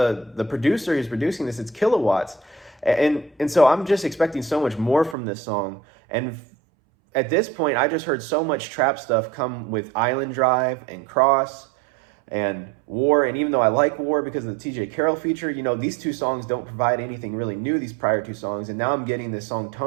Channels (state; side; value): drops out; left; at 5.2 s